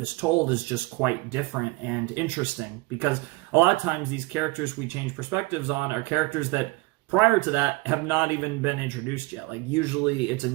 is told is just quite different and interesting, because a lot of times these characters we change perspectives on are characters that prior to that have not even been introduced yet. Like usually it's a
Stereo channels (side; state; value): left; quieter; 22.3 dB